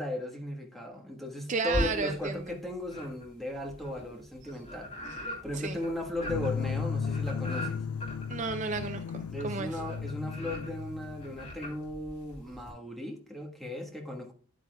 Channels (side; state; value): both; normal; correlation 0.54